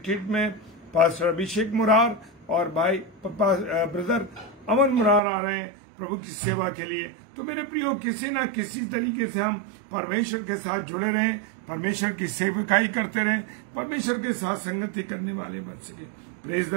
में पास्टर अभिषेक मुरार और भाई ब्रदर अमन मुरार आ रहे हैं प्रभु की सेवा के लिए। तो मेरे प्रियो, किसी न किसी तरीके से हम परमेश्वर के साथ जुड़े रहें, परमेश्वर की सेवकाई करते रहें, परमेश्वर के साथ संगति करने वाले बन सके। Praise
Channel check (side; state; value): left; drops out; at 5.2 s